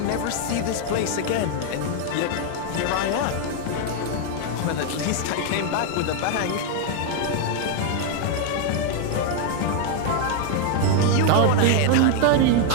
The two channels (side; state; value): both; different; correlation 0.00